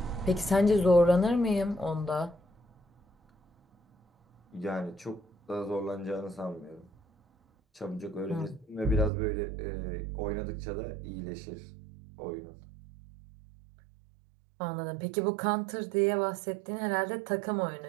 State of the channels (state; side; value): drops out; left; at 9.1 s